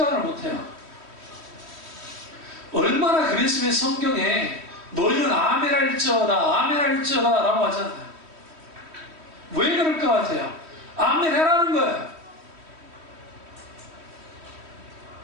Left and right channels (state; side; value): late; left; 3.1 ms